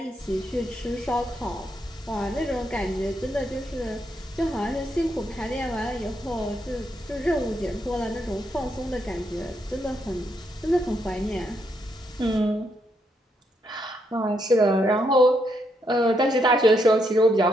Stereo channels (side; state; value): both; normal; correlation 0.78